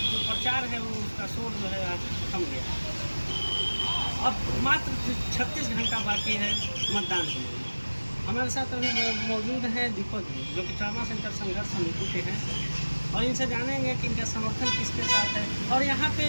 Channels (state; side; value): inverted; both; correlation -1.00